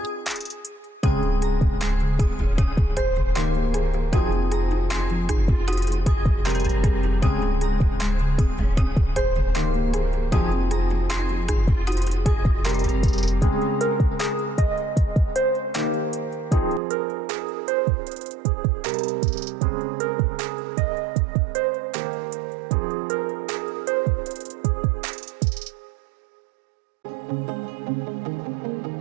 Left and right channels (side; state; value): left; drops out; at 16.8 s